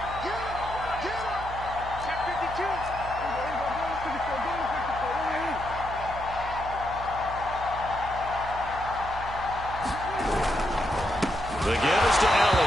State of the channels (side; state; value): right; noise; hum, 11 dB below the sound